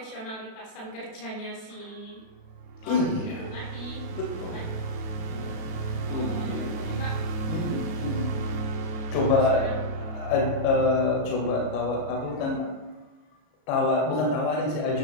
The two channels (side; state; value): right; late; 32 ms